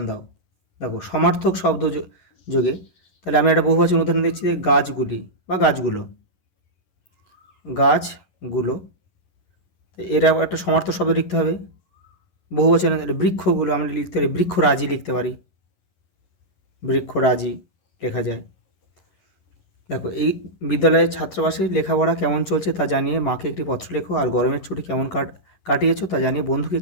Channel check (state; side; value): late; right; 11 ms